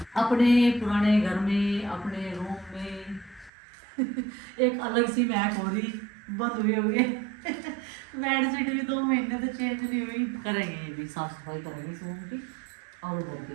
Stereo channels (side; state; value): left; drops out; at 3.5 s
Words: अपने पुराने घर में, अपने रूम में एक अलग सी महक हो रही, बंद हुए हुए बेडशीट भी 2 महीने से चेंज नहीं हुई। करेंगे ये भी साफ सफाई करेंगे इस रूम की। और उधर के